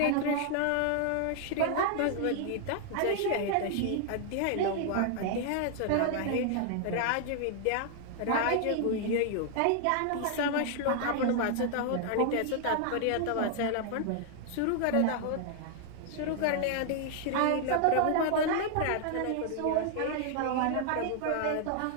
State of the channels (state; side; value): different; both; correlation 0.00